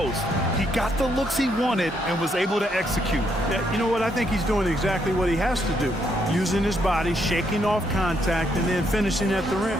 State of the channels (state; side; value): normal; both; correlation 0.75